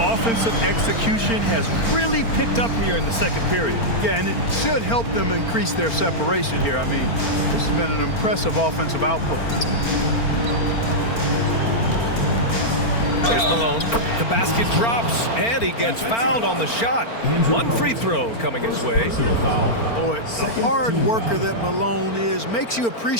execution has really picked up here in the second period. Yeah, and it should help them increase their separation here. I mean, this has been an impressive offensive output. Here's Malone. The basket drops, and he gets fouled on the shot. One free throw coming his way. Boy, the hard worker that Malone is makes you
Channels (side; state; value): right; late; 4.4 ms